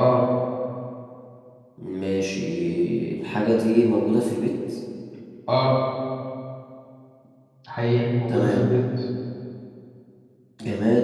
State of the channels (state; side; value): identical; both; correlation 1.00